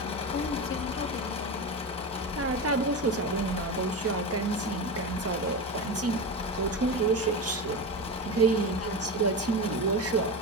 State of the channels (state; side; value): normal; both; correlation 0.21